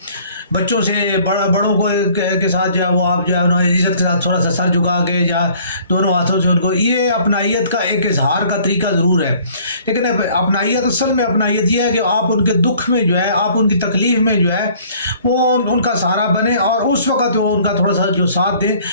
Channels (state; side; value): inverted; both; correlation -0.55